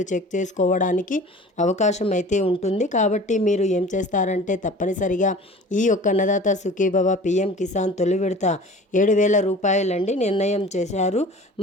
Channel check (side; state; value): both; normal; correlation 0.42